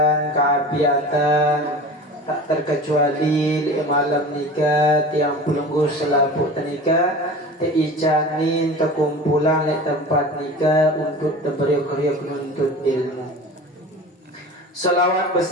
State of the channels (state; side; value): normal; both; correlation 0.36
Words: keafiatan tak terkecuali malam nikah tiang pelungguh selaput nikah teicanin terkumpulan di tempat nikah untuk beriuk-riuk menuntut ilmu. Salawat